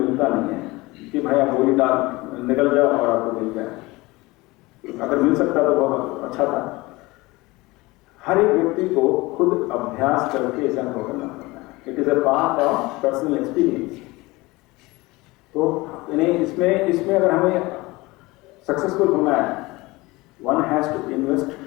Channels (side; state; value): right; quieter; 21.8 dB